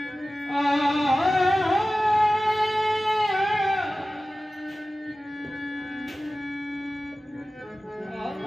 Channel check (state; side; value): normal; both; correlation 0.96